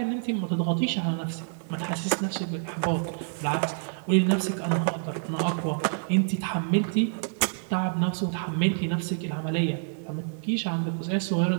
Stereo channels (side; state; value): left; silent; digital silence